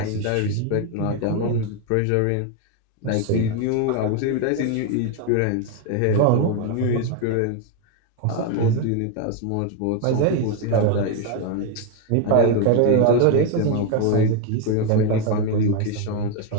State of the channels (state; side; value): different; both; correlation 0.01